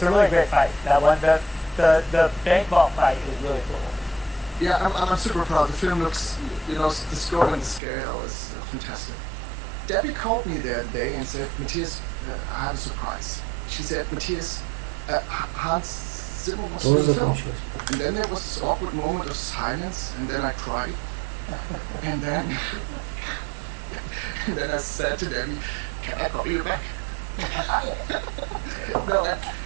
a really great fight. That one, the bank ball fight is really cool. Yeah, I'm super proud. The film looks, the scope and the scale is fantastic. Debbie called me the other day and said, Matthias, I have a surprise. She said, Matthias, Hans Zimmer was in the film. And then there was this awkward moment of silence, and then I cried. And then I said to Debbie, can I call you back?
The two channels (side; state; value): left; drops out; at 7.8 s